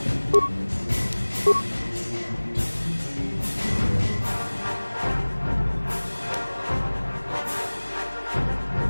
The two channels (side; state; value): both; inverted; correlation -1.00